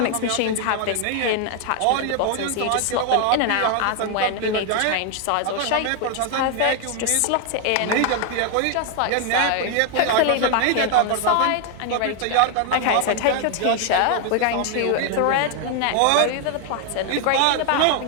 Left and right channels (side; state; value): both; different; correlation 0.00